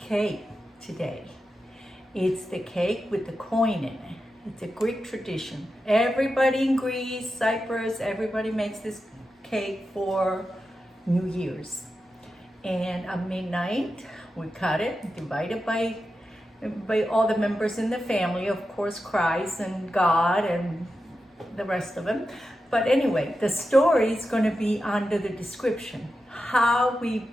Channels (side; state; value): both; normal; correlation 0.90